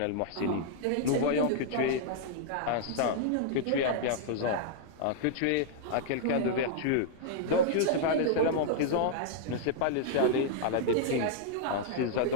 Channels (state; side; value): different; both; correlation -0.01